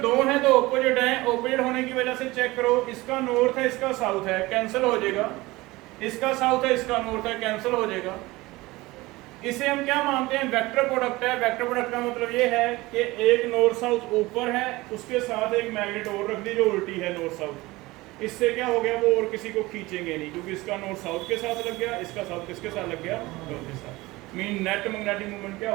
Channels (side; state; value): left; quieter; 20.5 dB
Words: हैं तो ऑपोजिट हैं, ऑपोजिट होने की वजह से चेक करो, इसका नॉर्थ है इसका साउथ है, कैंसिल हो जाएगा। इसका साउथ है इसका नॉर्थ है, कैंसिल हो जाएगा। इसे हम क्या मानते हैं? वेक्टर प्रोडक्ट है। वेक्टर प्रोडक्ट का मतलब ये है कि एक नॉर्थ साउथ ऊपर है, उसके साथ एक मैग्नेट और रख दी जो उल्टी है नॉर्थ साउथ। इससे क्या हो गया? वो और किसी को खींचेंगे नहीं, क्योंकि इसका नॉर्थ साउथ के साथ लग गया, इसका साउथ किसके साथ लग गया? नॉर्थ के साथ। मीन नेट मैग्नेटिक मूवमेंट क्या